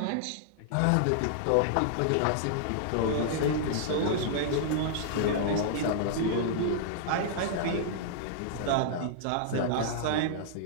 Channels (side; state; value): both; different; correlation -0.01